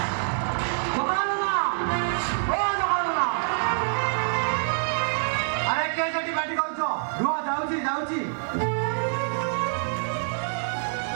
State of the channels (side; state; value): left; silent; digital silence